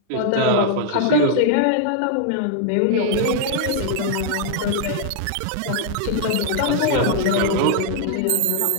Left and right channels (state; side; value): different; both; correlation -0.01